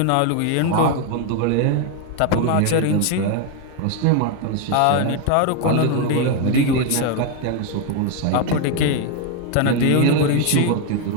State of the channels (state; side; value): different; both; correlation 0.01